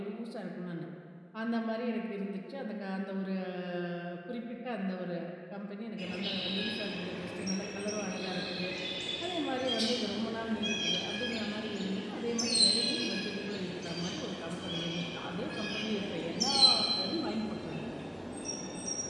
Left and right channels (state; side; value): identical; both; correlation 1.00